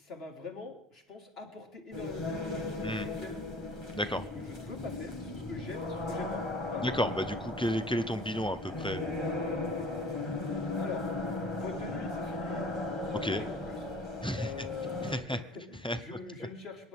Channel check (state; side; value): normal; both; correlation 0.47